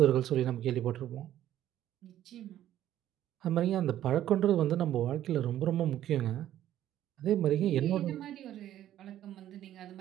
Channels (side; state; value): left; quieter; 12.2 dB